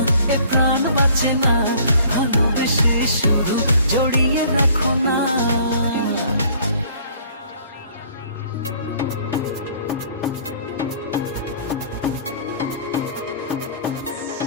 প্রাণ বাঁচে না, ভালোবেসে শুধু জড়িয়ে রাখো না।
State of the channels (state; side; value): inverted; both; correlation -0.55